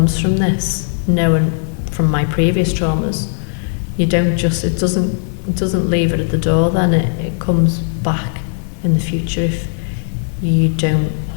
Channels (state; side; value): silent; right; digital silence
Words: from this, knowing from my previous traumas, you don't just, it doesn't leave it at the door, then it comes back in the future if you don't